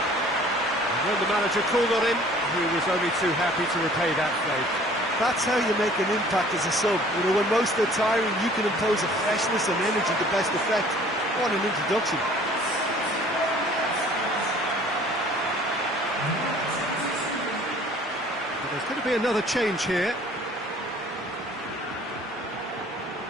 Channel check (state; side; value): normal; both; correlation 0.52